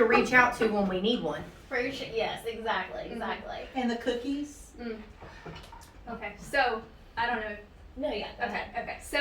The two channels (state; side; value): identical; both; correlation 1.00